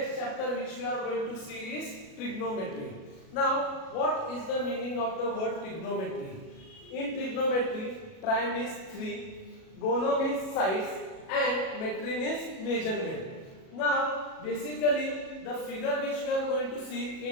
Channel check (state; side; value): late; right; 37 ms